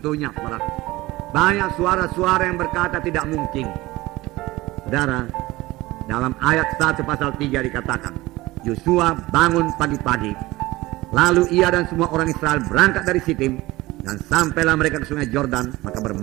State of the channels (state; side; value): quieter; left; 19.3 dB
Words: saudara. Banyak suara-suara yang berkata tidak mungkin. Saudara, dalam ayat 1 pasal 3 dikatakan, Yosua bangun pagi-pagi, lalu ia dan semua orang Israel berangkat dari Sitim, dan sampailah mereka ke sungai Yordan, maka